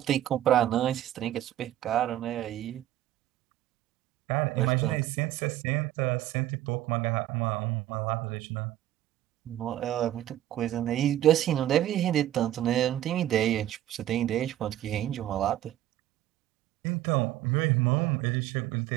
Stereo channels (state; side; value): quieter; left; 13.1 dB